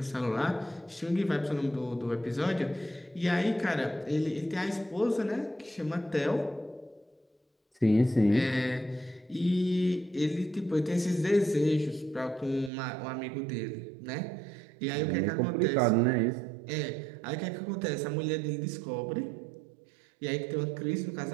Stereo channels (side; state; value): left; drops out; at 12.7 s